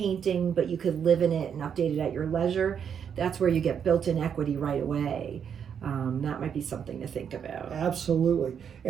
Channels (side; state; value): left; quieter; 7.8 dB